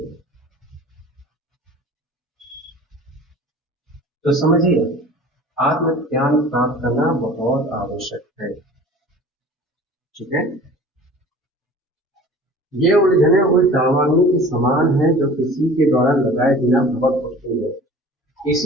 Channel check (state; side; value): normal; both; correlation 0.43